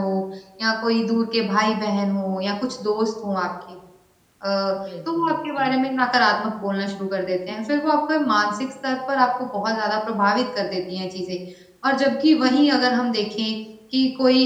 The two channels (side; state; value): both; identical; correlation 1.00